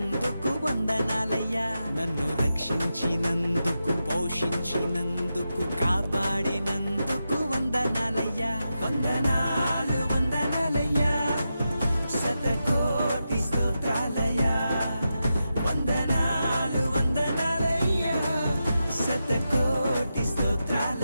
వందనాలయ్యా నన్ను రక్షించినందుకు పోషించినందుకు కాపాడినందుకు వందనాలయ్యా వందనాలు వందనాలయ్యా శతకోటి స్తోత్రాలయ్యా వందనాలు వందనాలయ్యా శతకోటి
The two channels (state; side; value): inverted; both; correlation -0.89